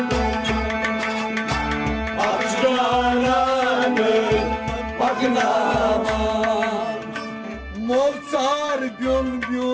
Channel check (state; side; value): identical; both; correlation 1.00